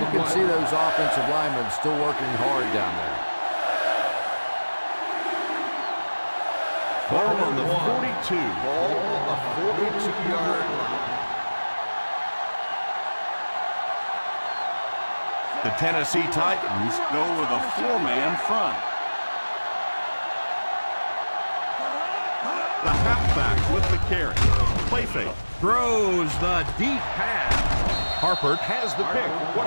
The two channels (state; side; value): inverted; both; correlation -1.00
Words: can see those offensive linemen still working hard down there. Ball on the 42. Ball on the 42-yard line. The Tennessee Titans go with a four-man front. The halfback with the carry. Play fake. Throws the deep pass. Harper has the pick.